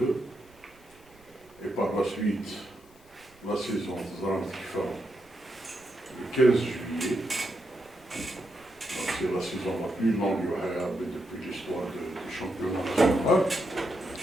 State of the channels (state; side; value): noise; right; rumble, 29 dB below the sound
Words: Et par la suite, la saison le 15 juillet. Donc c'est la saison la plus longue depuis l'histoire du championnat national.